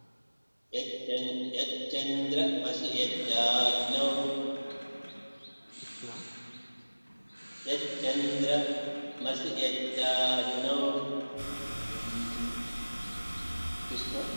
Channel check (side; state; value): both; inverted; correlation -1.00